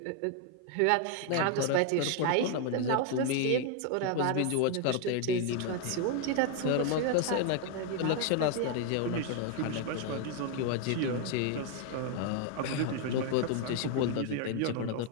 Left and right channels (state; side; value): different; both; correlation 0.00